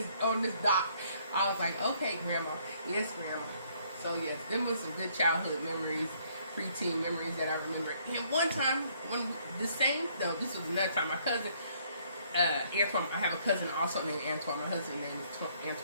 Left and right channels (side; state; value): both; inverted; correlation -0.65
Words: dock." I was like, "Okay, Grandma." Yes, Grandma. So yes, them was some good childhood memories, preteen memories that I remember. And one time, this was another time, my cousin, Antoine, I have a cousin also named Antoine. My husband's name is